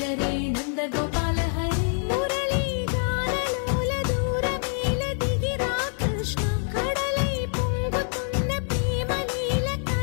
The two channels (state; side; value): silent; right; 55 dB below the other